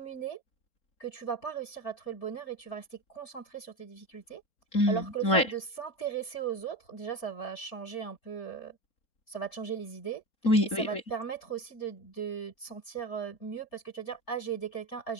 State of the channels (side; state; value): right; late; 4.3 ms